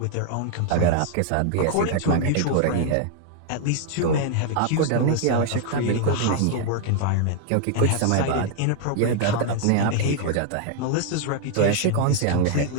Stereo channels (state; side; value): different; both; correlation 0.00